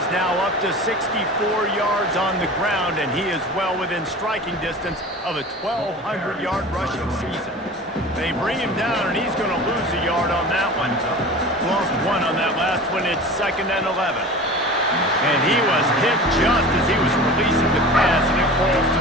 now up to 64 yards on the ground, and he is well within striking distance of a 1,200-yard rushing season. They bring him down, and he's going to lose a yard on that one. Lost 1 on that last one. It's 2nd and 11. And he was hit just as he was releasing the pass, and it falls to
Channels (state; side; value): normal; both; correlation 0.36